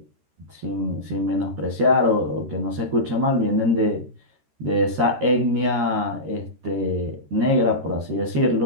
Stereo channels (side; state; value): left; late; 13 ms